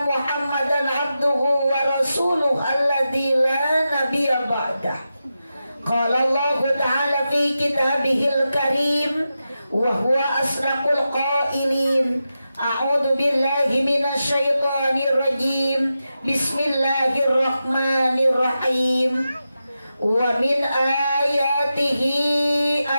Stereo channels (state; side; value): inverted; both; correlation -0.90